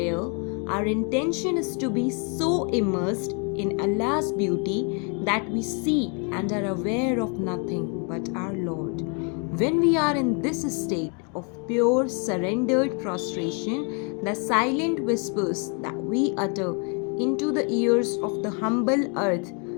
our intention is to be so immersed in Allah's beauty that we see and are aware of nothing but our Lord. When we are in this state of pure surrendered prostration, the silent whispers that we utter into the ears of the humble earth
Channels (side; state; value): right; quieter; 37.0 dB